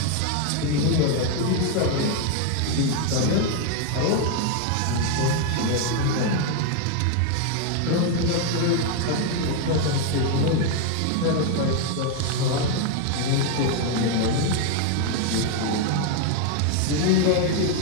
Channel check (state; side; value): different; both; correlation 0.01